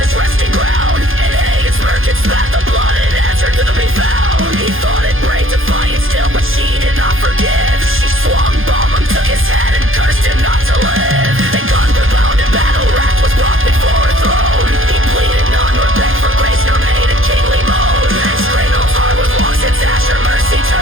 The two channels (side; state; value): left; late; 0.60 ms